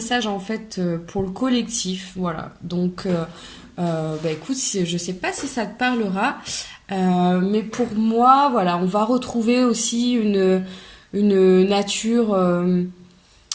en fait pour le collectif, voilà. Donc, écoute, je sais pas si ça te parlera, mais pour moi, voilà, on va retrouver aussi une nature,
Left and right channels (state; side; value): identical; both; correlation 1.00